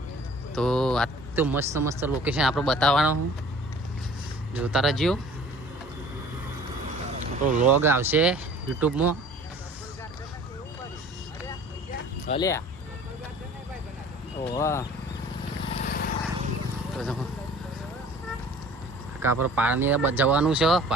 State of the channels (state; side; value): normal; both; correlation 0.48